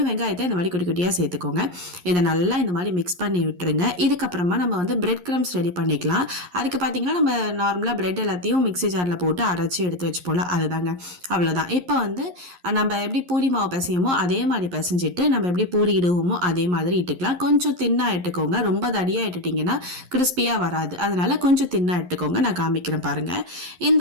வெங்காயத்தை இந்த மாதிரி குட்டி குட்டியாக சேர்த்துக்கோங்க. இதை நல்லா இந்த மாதிரி மிக்ஸ் பண்ணி விட்டுருங்க. இதுக்கப்புறமா நம்ம வந்து பிரெட் கிரம்ஸ் ரெடி பண்ணிக்கலாம். அதுக்கு பார்த்தீங்கன்னா நம்ம நார்மலாக பிரெட் எல்லாத்தையும் மிக்ஸி ஜாரில் போட்டு அரைச்சி எடுத்து வச்சுப்போல, அதுதாங்க. அவ்வளோதான். இப்போ வந்து நம்ம எப்படி பூரி மாவு பிசையுமோ அதே மாதிரி பிசைஞ்சிட்டு நம்ம எப்படி பூரி இடுவோமோ அதே மாதிரி இட்டுக்கலாம். கொஞ்சம் தின்னாக இட்டுக்கோங்க. ரொம்ப தடியாக இட்டுட்டிங்கன்னா கிறிஸ்பியாக வராது. அதனால கொஞ்சம் தின்னாக இட்டுக்கோங்க. நான் காமிக்கிறேன் பாருங்கள்.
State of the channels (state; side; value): late; left; 11 ms